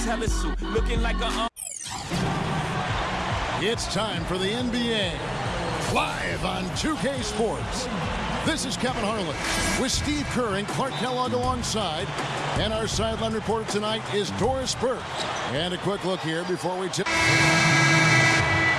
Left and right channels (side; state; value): both; identical; correlation 1.00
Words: looking like a. It's time for the NBA, live on 2K Sports. This is Kevin Harlan with Steve Kerr and Clark Kellogg alongside. And our sideline reporter tonight is Doris Burke. And a quick look here before we tip.